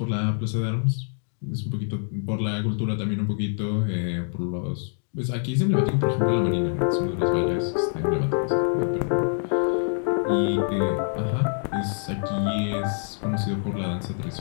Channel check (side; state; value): right; silent; 61 dB below the other